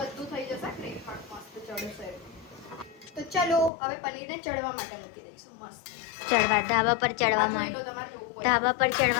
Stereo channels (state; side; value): drops out; right; at 3.7 s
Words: થઈ જશે. ગ્રેવી પાક મસ્ત ચડશે. તો ચલો હવે પનીરને ચડવા માટે મૂકી દઈશું. મસ્ત ચડવા ધાબા પર ચડવા આ માંડ. જોઈ લો, તમારે જોવું હોય. ધાબા પર